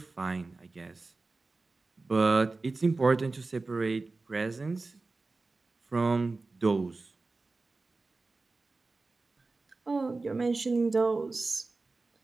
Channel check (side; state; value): left; quieter; 3.6 dB